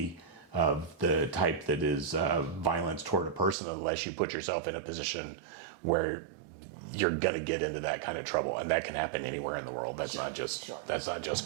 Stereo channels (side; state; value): left; drops out; at 3.6 s